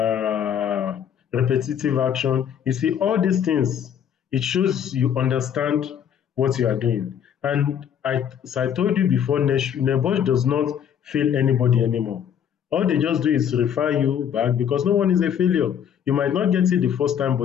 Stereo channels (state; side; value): quieter; right; 8.8 dB